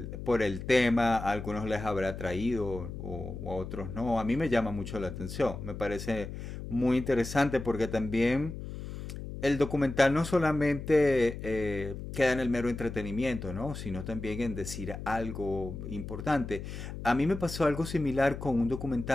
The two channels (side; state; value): left; noise; hum, 9 dB below the sound